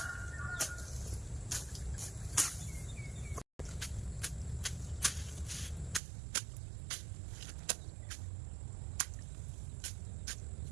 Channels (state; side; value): drops out; left; at 6.0 s